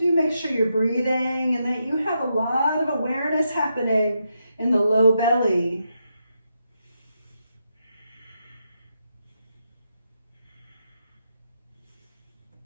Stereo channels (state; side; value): inverted; both; correlation -0.83